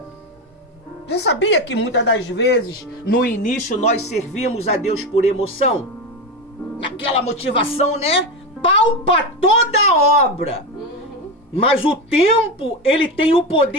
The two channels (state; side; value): normal; both; correlation 0.17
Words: Você sabia que muitas das vezes, no início, nós servimos a Deus por emoção? Naquela motivação, né? Palpa toda a obra. Mas o tempo, ele tem o